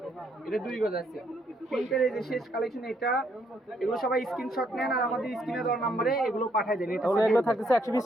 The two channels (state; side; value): normal; both; correlation 0.71